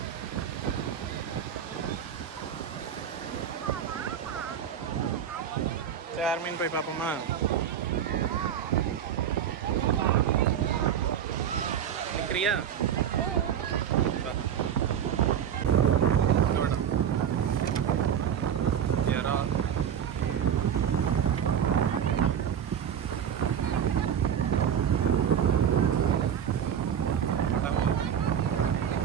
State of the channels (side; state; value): left; quieter; 8.8 dB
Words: சரி மீன் போய் பார்ப்போமா. நிற்கிறியா?